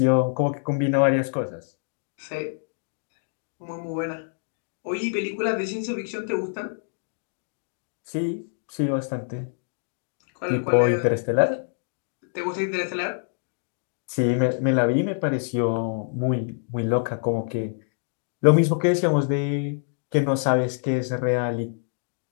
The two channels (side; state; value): right; silent; digital silence